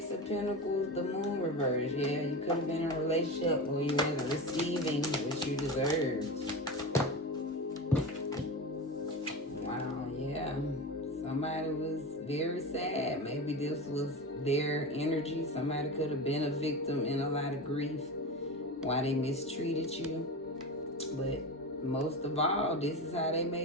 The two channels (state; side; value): normal; both; correlation 0.25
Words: of Pentacles, the Moon reverse. Yeah, you could have been in a relationship where you wasn't receiving what you deserved. Wow, yeah. Somebody was very sad. Maybe this was their energy. Somebody could have been a victim in a lot of grief why they mistreated you. But most of all, this is how they